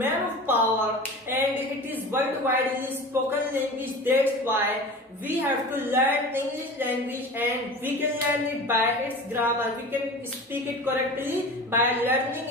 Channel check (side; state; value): both; normal; correlation 0.35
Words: of power and it is worldwide spoken language. That's why we have to learn English language, and we can learn it by its grammar. We can speak it correctly by